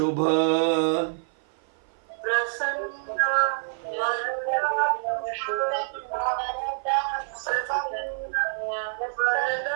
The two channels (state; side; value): silent; left; 55 dB below the other